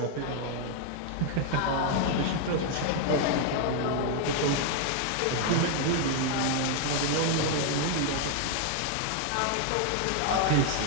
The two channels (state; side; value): different; both; correlation 0.00